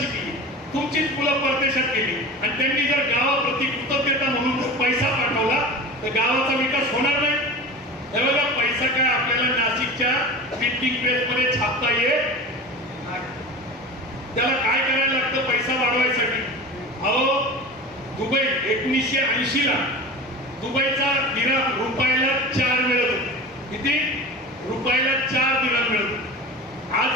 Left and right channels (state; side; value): normal; both; correlation 0.33